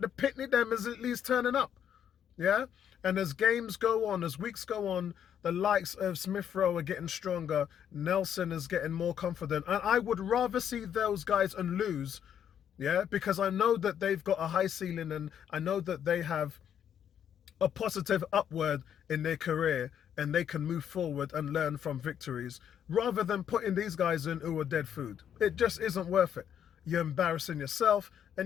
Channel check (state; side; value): quieter; right; 9.2 dB